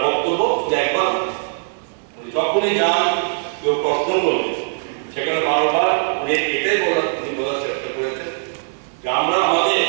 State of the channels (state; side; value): silent; left; 64 dB below the other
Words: বক্তব্য যে একবার উনি যখনই যান কেউ প্রশ্ন করবে, সেখানে বারবার উনি এটাই বলার চেষ্টা করেছেন যে আমরা